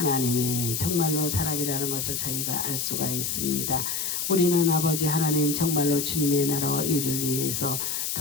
정말로 사람이라는 것을 저희가 알 수가 있습니다. 우리는 아버지 하나님 정말로 주님의 나라와 의를 위해서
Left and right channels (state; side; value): noise; left; hiss, 2 dB below the sound